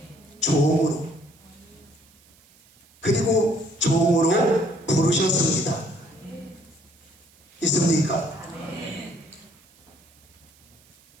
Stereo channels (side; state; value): right; noise; hiss, 29 dB below the sound